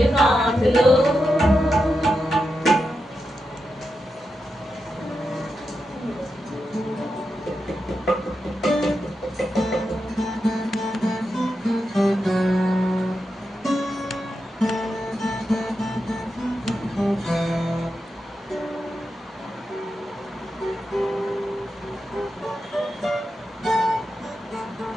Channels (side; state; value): both; normal; correlation 0.88